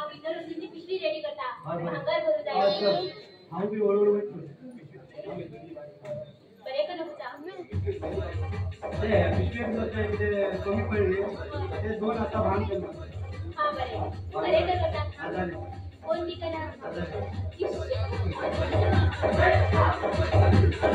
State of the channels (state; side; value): identical; both; correlation 1.00